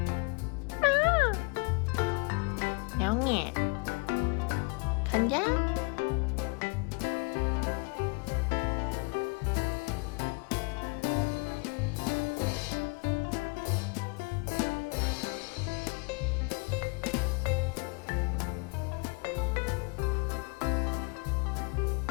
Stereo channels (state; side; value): quieter; right; 31.9 dB